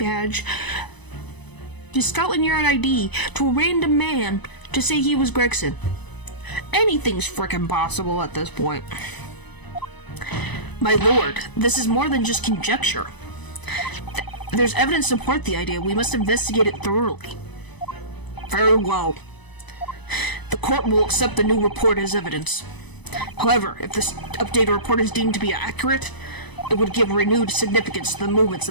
his Scotland Yard ID, to a random man to say he was Gregson. Anything's frickin' possible at this point. My lord, this is more than just conjecture. There's evidence to support the idea. We must investigate it thoroughly. Very well. The court will accept the new report as evidence. However, if this updated report is deemed to be accurate, it would give renewed significance to the movements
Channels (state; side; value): late; right; 1.0 ms